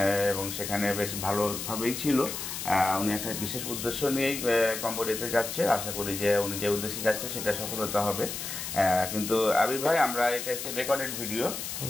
এবং সেখানে বেশ ভালোভাবেই ছিল। উনি একটা বিশেষ উদ্দেশ্য নিয়েই কম্বোডিয়াতে যাচ্ছে। আশা করি যে উনি যে উদ্দেশ্যে যাচ্ছে সেটা সফলতা হবে। কিন্তু আবির ভাই, আমরা এটা হচ্ছে রেকর্ডেড ভিডিও,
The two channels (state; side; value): noise; left; hiss, 6 dB below the sound